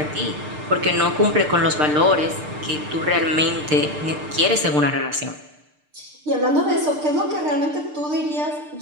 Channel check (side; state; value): left; late; 6.7 ms